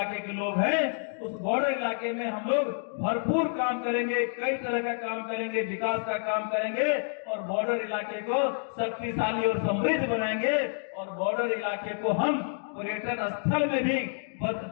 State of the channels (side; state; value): right; silent; 59 dB below the other